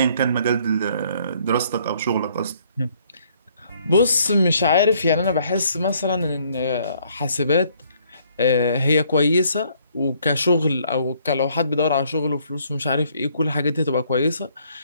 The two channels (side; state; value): both; inverted; correlation -0.65